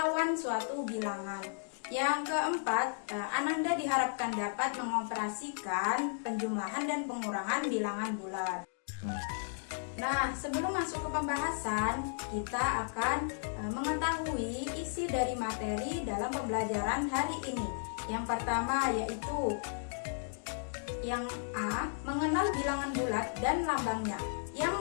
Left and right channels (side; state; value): right; silent; digital silence